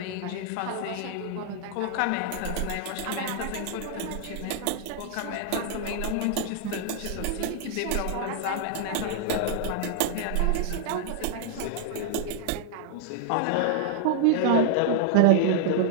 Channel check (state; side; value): different; both; correlation -0.01